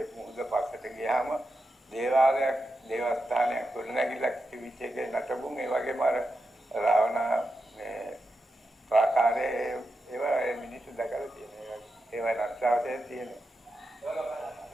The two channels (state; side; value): normal; both; correlation 0.88